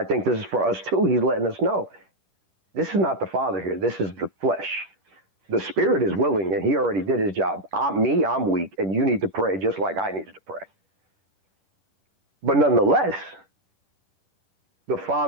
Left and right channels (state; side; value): late; left; 10 ms